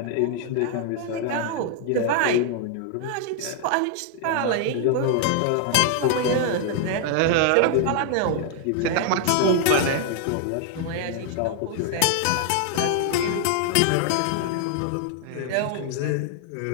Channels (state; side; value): different; both; correlation 0.00